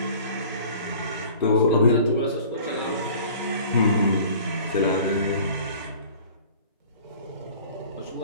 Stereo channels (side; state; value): both; inverted; correlation -0.46